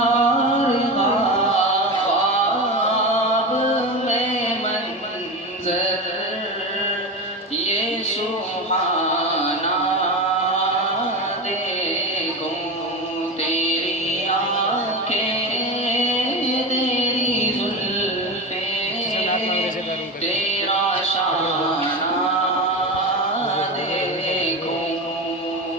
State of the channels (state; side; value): normal; both; correlation 0.22